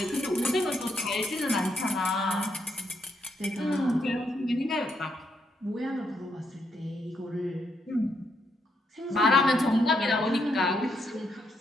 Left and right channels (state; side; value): normal; both; correlation 0.78